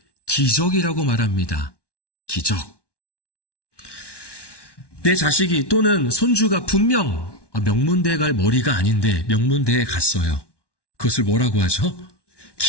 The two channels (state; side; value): late; right; 1.1 ms